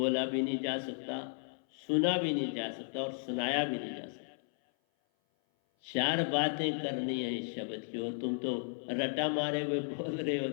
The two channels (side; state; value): right; silent; 55 dB below the other